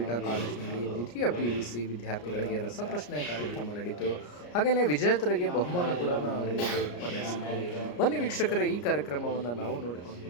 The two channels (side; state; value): right; late; 34 ms